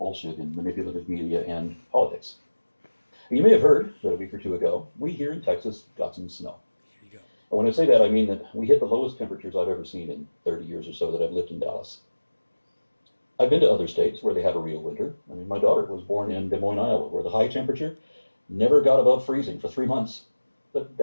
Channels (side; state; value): both; inverted; correlation -1.00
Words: in manipulative media and politics. And you may have heard that a week or two ago, we here in Texas got some snow. Here you go. And when I say that, I mean that we hit the lowest temperatures I've ever seen in 30 years or so that I've lived in Dallas. I've been to other states where they have a real winter. I mean, my daughter was born in Des Moines, Iowa, where the high temperature never got above freezing for 3 months. But